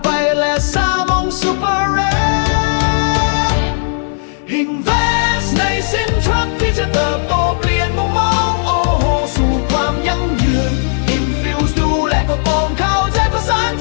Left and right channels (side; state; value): right; silent; 56 dB below the other